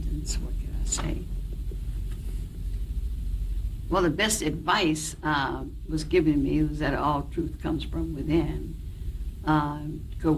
what could I say? Well, the best advice was given me was that all truth comes from within. Go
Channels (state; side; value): identical; both; correlation 1.00